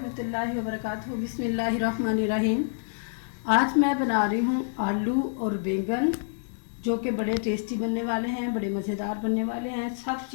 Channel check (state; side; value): silent; right; digital silence